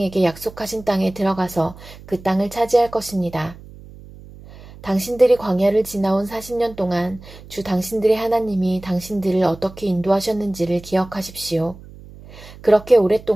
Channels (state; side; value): noise; right; hum, 19 dB below the sound